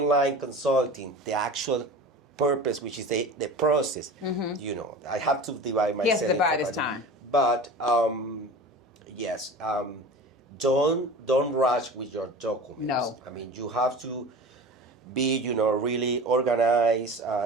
consulting, the actual purpose, which is the process. I have to divide myself. Yes, divide his time. But yes, don't rush with your documents. No. I mean, you have to be really organized.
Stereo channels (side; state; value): both; normal; correlation 0.35